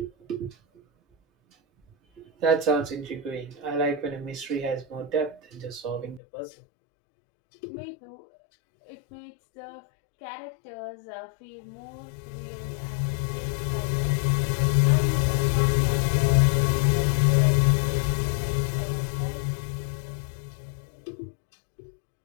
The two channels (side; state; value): right; drops out; at 6.2 s